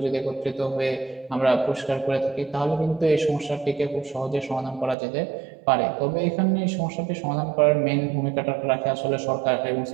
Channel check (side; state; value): left; drops out; at 5.0 s